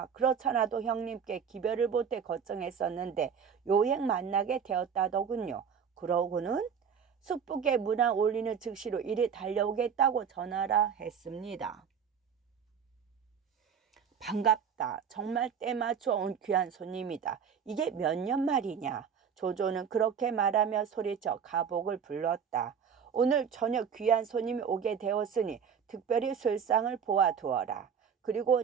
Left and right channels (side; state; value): left; quieter; 7.1 dB